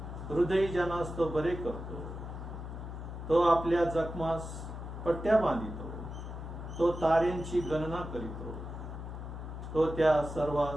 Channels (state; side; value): noise; left; hum, 8 dB below the sound